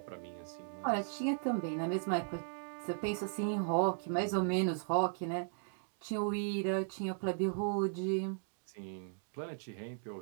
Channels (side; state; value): left; silent; digital silence